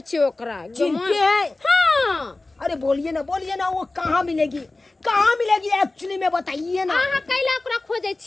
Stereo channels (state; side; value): quieter; right; 3.1 dB